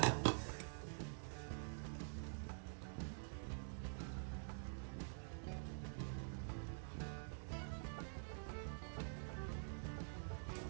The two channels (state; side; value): silent; left; digital silence